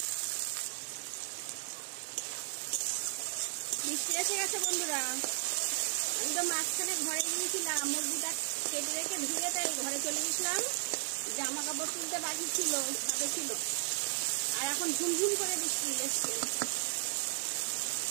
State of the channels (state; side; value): silent; left; digital silence